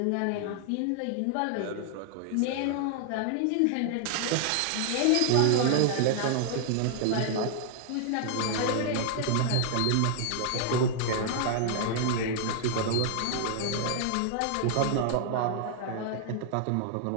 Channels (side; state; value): both; different; correlation 0.00